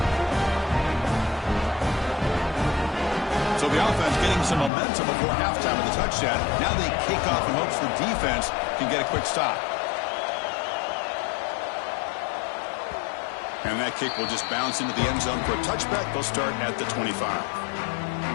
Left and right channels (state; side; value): drops out; right; at 4.7 s